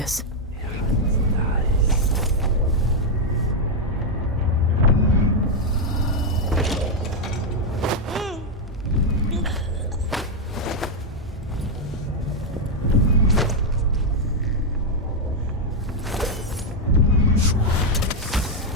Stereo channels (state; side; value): normal; both; correlation 0.01